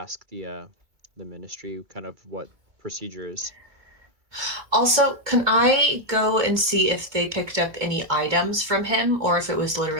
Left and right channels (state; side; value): late; left; 2.4 ms